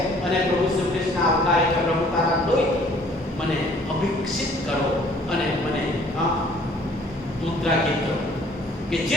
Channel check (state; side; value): normal; both; correlation 0.57